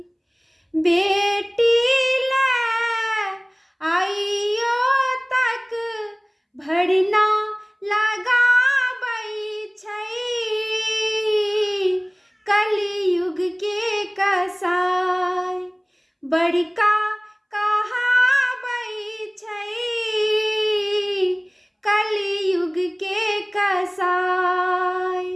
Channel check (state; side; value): identical; both; correlation 1.00